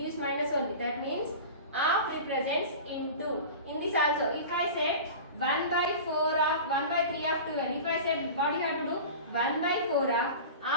minus only. That means half represents into. In this also, if I said 1 by 4 of 1 by 3 of 12, if I said what you have to do? 1 by 4 of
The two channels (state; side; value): inverted; both; correlation -0.33